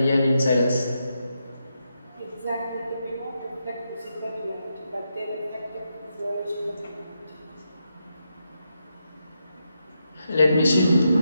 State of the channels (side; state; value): both; inverted; correlation -0.84